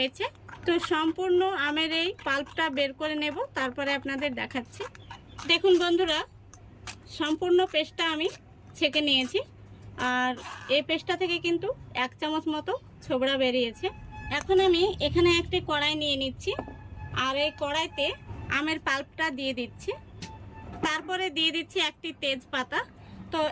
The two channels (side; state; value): both; identical; correlation 1.00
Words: তো সম্পূর্ণ আমের এই পাল্পটা বের করে নেব, তারপরে আপনাদের দেখাচ্ছি। দেখুন বন্ধুরা, সম্পূর্ণ পেস্টটা আমি ছেঁকে নিয়েছি। আর এই পেস্টটা থেকে কিন্তু 1 চামচ মতো ছোবড়া বেরিয়েছে। এখন আমি এখানে একটি কড়াই নিয়ে নিচ্ছি। আর এই কড়াইতে আমের পাল্পটা দিয়ে দিচ্ছি। তারপরে দিয়ে দিচ্ছি একটি তেজপাতা। তো